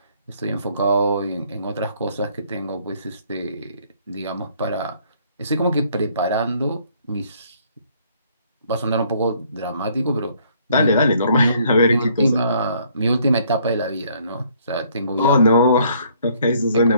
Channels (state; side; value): inverted; both; correlation -0.64